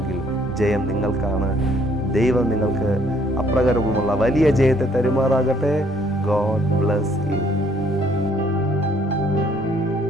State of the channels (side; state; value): both; normal; correlation 0.64